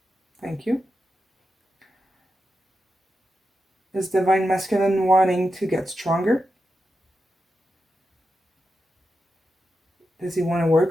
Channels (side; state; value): both; normal; correlation 0.89